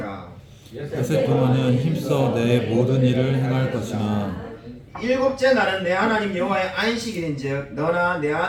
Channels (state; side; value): identical; both; correlation 1.00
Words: 엿새 동안은 힘써 내 모든 일을 행할 것이나 일곱째 날은 내 하나님 여호와의 안식일인즉 너나 내